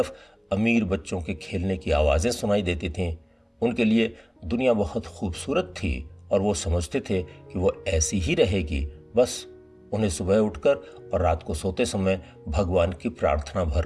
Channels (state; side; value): identical; both; correlation 1.00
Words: अमीर बच्चों के खेलने की आवाजें सुनाई देती थीं। उनके लिए दुनिया बहुत खूबसूरत थी और वो समझते थे कि वो ऐसी ही रहेगी, बस उन्हें सुबह उठकर और रात को सोते समय भगवान की प्रार्थना भर